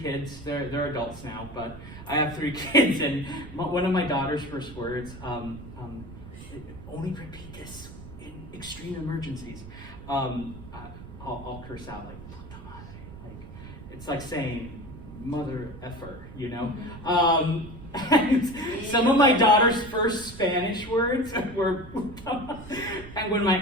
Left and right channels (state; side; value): noise; right; rumble, 14 dB below the sound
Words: They're adults now, but I have 3 kids. And one of my daughter's first words, only repeat this in extreme emergencies. I'll curse out like, puta madre. Like, it's like saying, mother effer, you know? And some of my daughter's first Spanish words were, and when my